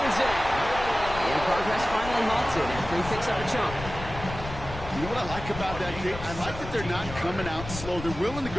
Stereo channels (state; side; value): noise; left; rumble, 10 dB below the sound